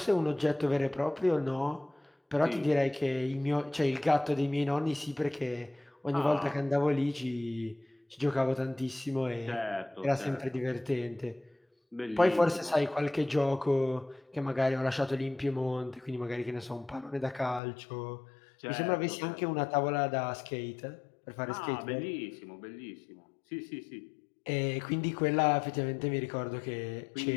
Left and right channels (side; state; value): right; drops out; at 17.6 s